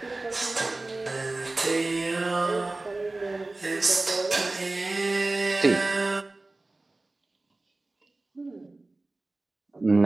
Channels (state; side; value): quieter; left; 3.0 dB